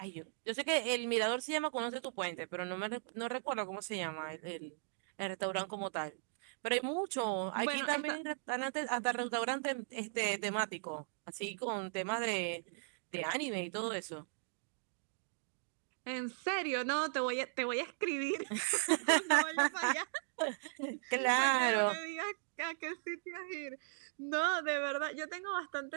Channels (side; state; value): left; silent; digital silence